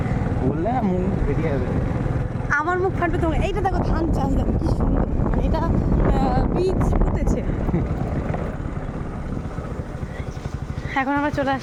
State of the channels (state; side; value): identical; both; correlation 1.00